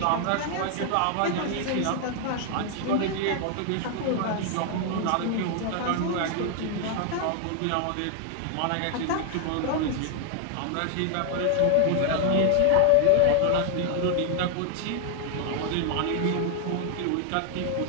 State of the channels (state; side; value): different; both; correlation 0.00